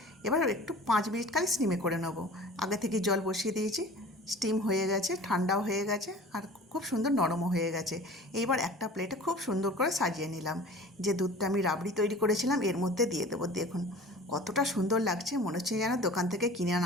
এবার একটু 5 মিনিট খালি স্টিমে করে নেব। আগে থেকে জল বসিয়ে দিয়েছি, স্টিম হয়ে গেছে, ঠান্ডাও হয়ে গেছে, আর খুব সুন্দর নরমও হয়ে গেছে। এইবার একটা প্লেটে খুব সুন্দর করে সাজিয়ে নিলাম। যে দুধটা আমি রাবড়ি তৈরি করেছিলাম এর মধ্যে দিয়ে দেবো। দেখুন কতটা সুন্দর লাগছে, মনে হচ্ছে যেন দোকান থেকে কিনে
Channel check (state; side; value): normal; both; correlation 0.42